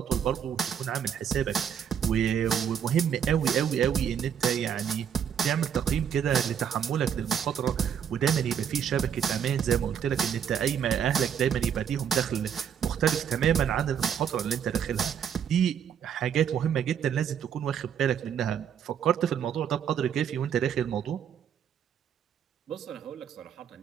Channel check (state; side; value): quieter; left; 8.3 dB